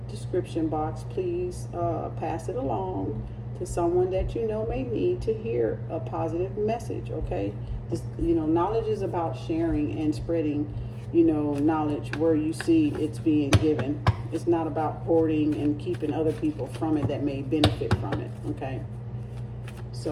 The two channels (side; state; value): both; identical; correlation 1.00